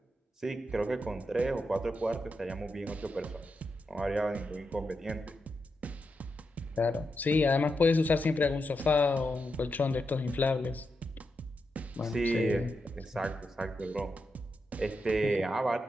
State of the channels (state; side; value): normal; both; correlation 0.86